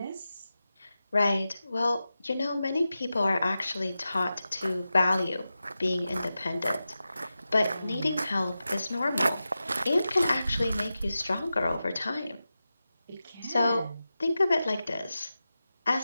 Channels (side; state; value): both; inverted; correlation -0.93